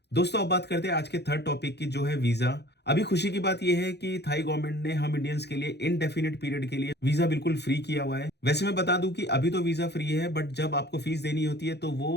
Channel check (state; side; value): late; right; 0.49 ms